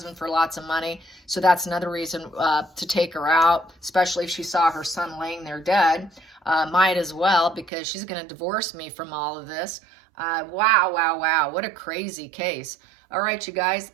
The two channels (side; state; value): left; drops out; at 7.7 s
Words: for lots of money. So that's another reason to take her out, especially if she saw her son laying there dead. Might as well, because she's going to divorce me from all of this. Wow. What a crazy case. All right, you guys,